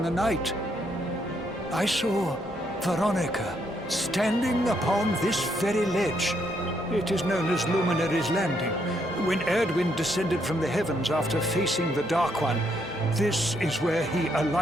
the night. I saw Veronica standing upon this very ledge. It is known as Luminary's Landing. When Erdwind descended from the heavens after facing the Dark One, this is where he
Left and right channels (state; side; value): normal; both; correlation 0.74